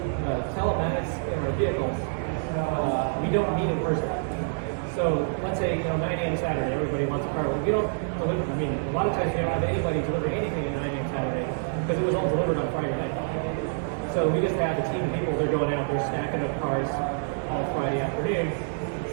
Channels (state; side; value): silent; left; 60 dB below the other